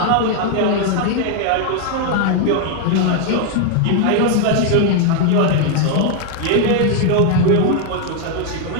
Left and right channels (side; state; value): both; different; correlation 0.00